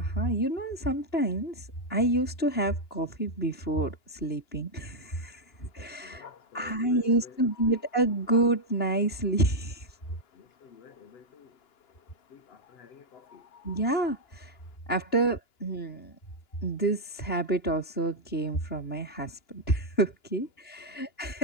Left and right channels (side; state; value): right; late; 2.9 ms